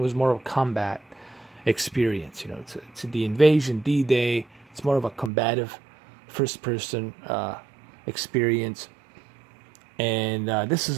was more of a combat experience. You know, it's the invasion, D-Day. It's more of a combative first-person experience, and this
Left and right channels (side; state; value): left; drops out; at 5.3 s